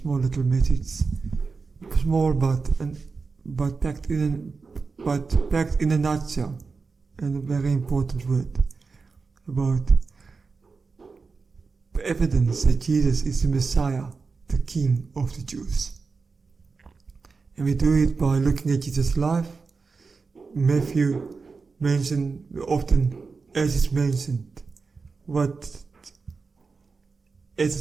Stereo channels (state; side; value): quieter; left; 4.5 dB